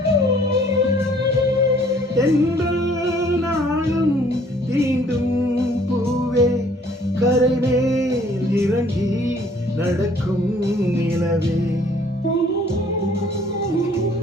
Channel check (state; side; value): normal; both; correlation 0.58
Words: தென்றல் நாளும் தீண்டும் பூவே, கரை மேல் இறங்கி நடக்கும் நிலவே.